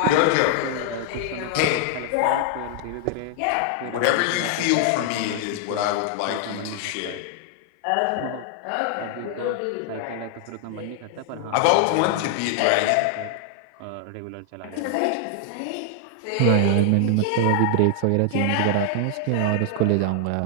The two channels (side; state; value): both; different; correlation 0.00